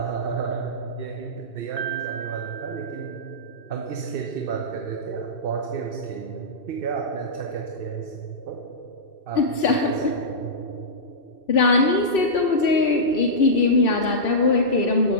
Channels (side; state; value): right; late; 2.6 ms